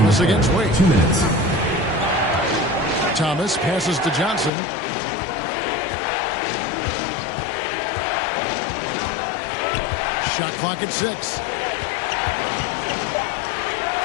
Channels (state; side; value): drops out; right; at 4.5 s